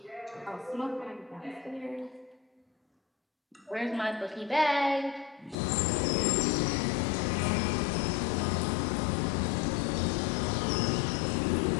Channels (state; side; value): drops out; right; at 5.6 s